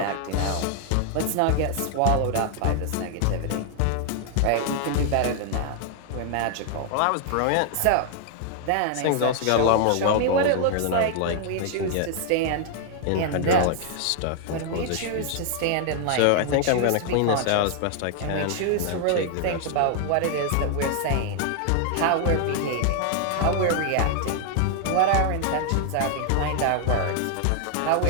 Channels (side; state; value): both; different; correlation 0.00